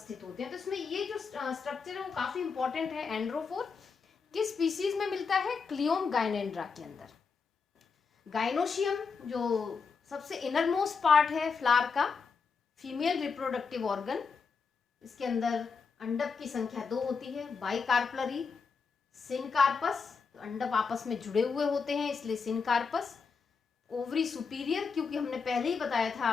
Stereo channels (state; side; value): quieter; right; 5.2 dB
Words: होते हैं। तो इसमें ये जो स्ट्रक्चर है वो काफी इंपॉर्टेंट है। एंड्रोफोर किस स्पीसीज में मिलता है? क्लियोम गाइनेंड्रा के अंदर। गाइनोशियम जो सबसे इनर मोस्ट पार्ट है फ्लावर का, फीमेल रिप्रोडक्टिव ऑर्गन, इसके अंदर अंडक की संख्या 2 होती है। बाइकार्पलरी, सिनकार्पस, तो अंडक आपस में जुड़े हुए होते हैं इसलिए सिनकार्पस। ओवरी सुपीरियर, क्योंकि हमने पहले ही बताया था